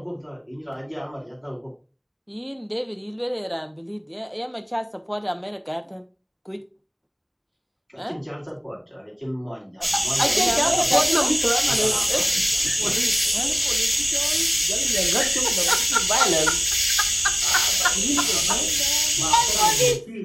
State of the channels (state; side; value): identical; both; correlation 1.00